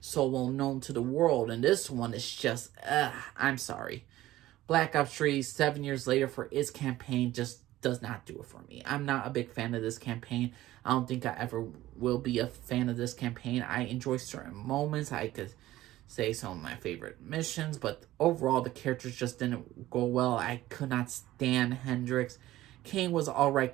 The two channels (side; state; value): left; quieter; 15.6 dB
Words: well known to the world. And this one is just, I'm sorry. Black Ops 3, 7 years later, for its campaign, just does not do it for me. I'm not a big fan of this campaign. I don't think I ever will be a fan of this campaign. I enjoy certain moments. I could say some of my favorite missions, but overall the characters just didn't go well. I could not stand Hendrix. Kane was an alright